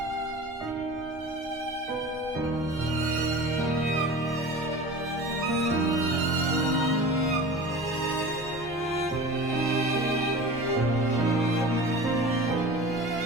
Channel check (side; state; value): both; normal; correlation 0.36